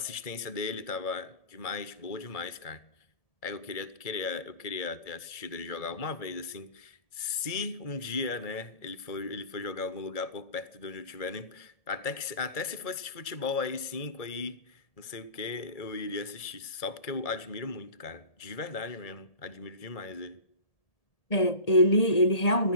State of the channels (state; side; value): late; right; 1.7 ms